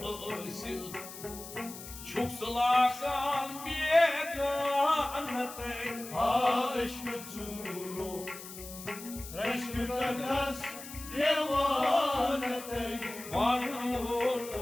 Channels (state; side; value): noise; left; hiss, 13 dB below the sound